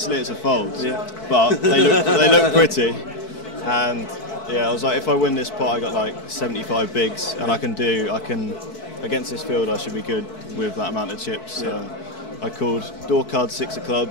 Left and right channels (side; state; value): right; late; 4.6 ms